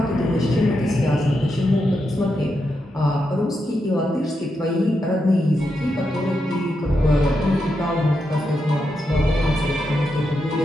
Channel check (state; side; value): normal; both; correlation 0.85